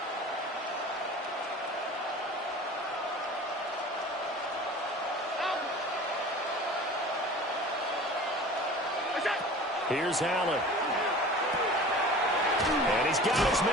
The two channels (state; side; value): normal; both; correlation 0.40